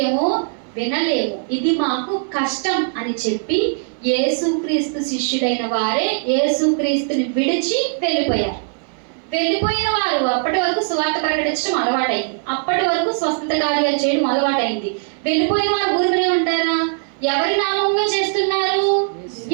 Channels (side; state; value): left; silent; digital silence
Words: వినలేము, ఇది మాకు కష్టం అని చెప్పి యేసుక్రీస్తు శిష్యుడైన వారే యేసుక్రీస్తుని విడిచి వెళ్ళిపోయారు. వెళ్ళిపోయిన వారు అప్పటి వరకు సువార్త ప్రకటించడం అలవాటైంది, అప్పటి వరకు స్వస్థత కార్యాలు చేయడం అలవాటైంది. వెళ్ళిపోయిన వారు ఊరికనే ఉంటారా? ఎవరి నామంలో చేస్తున్నారు?